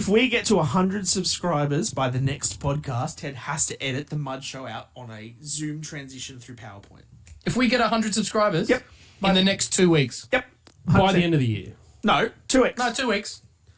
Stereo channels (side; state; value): both; identical; correlation 1.00